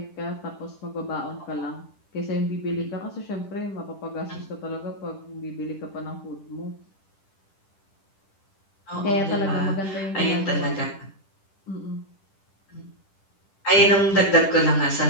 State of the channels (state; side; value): late; right; 10 ms